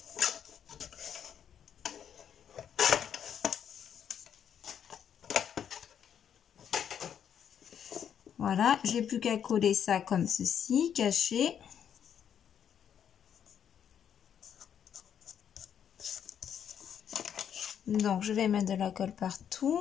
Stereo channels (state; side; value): quieter; right; 8.7 dB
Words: Voilà, j'ai plus qu'à coller ça comme ceci, caché. Donc, je vais mettre de la colle